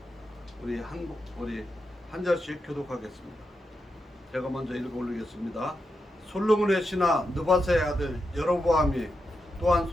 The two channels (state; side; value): normal; both; correlation 0.86